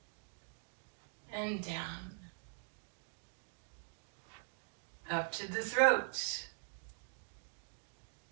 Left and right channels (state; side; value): silent; left; digital silence